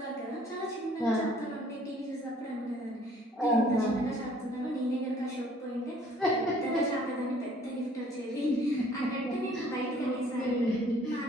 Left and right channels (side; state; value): both; normal; correlation 0.57